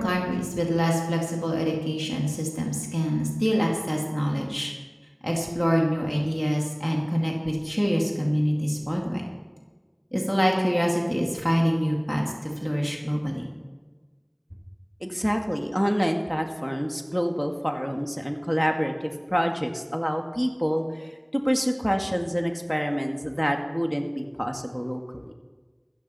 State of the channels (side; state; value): both; identical; correlation 1.00